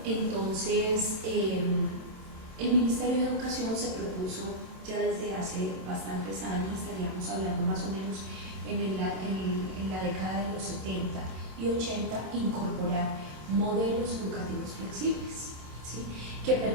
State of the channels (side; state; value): left; late; 27 ms